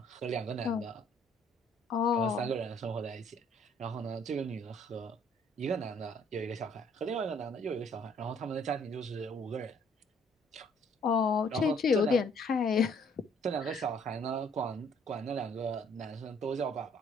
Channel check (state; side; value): normal; both; correlation 0.62